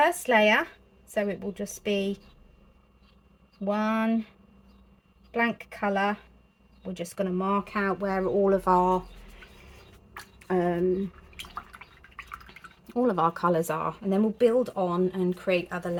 layer, so it will just be one blank colour. We're just going to mark out where all of our colours are, and then we'll build on and create other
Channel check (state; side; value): identical; both; correlation 1.00